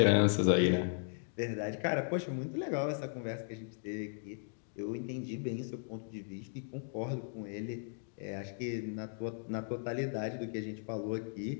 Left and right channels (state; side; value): silent; right; digital silence